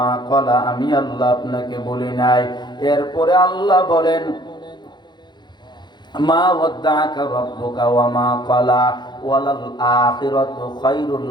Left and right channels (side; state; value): right; late; 0.21 ms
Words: ক্বালা, আমি আল্লাহ আপনাকে বলি নাই। এরপরে আল্লাহ বলেন, মা ওয়াদ্দাআকা রাব্বুকা ওয়া মা ক্বালা ওয়ালাল আখিরাতু খায়রুল